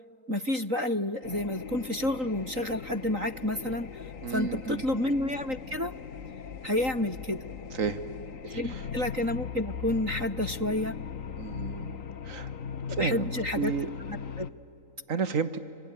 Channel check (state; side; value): late; left; 3.9 ms